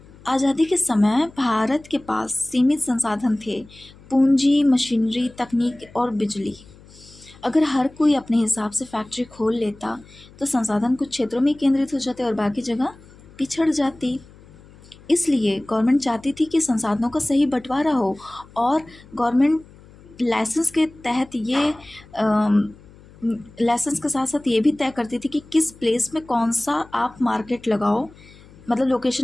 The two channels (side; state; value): left; noise; hum, 23 dB below the sound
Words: आज़ादी के समय भारत के पास सीमित संसाधन थे, पूंजी, मशीनरी, तकनीक और बिजली। अगर हर कोई अपने हिसाब से फैक्ट्री खोल लेता तो संसाधन कुछ क्षेत्रों में केंद्रित हो जाते और बाकी जगह पिछड़ जाती। इसलिए गवर्नमेंट चाहती थी कि संसाधनों का सही बंटवारा हो, और गवर्नमेंट लाइसेंस के तहत ये लाइसेंस के साथ साथ ये भी तय करती थी कि किस प्लेस में कौन सा आप मार्केट लगाओ, मतलब